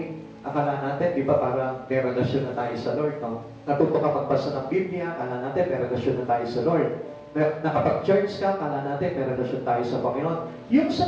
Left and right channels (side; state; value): both; identical; correlation 1.00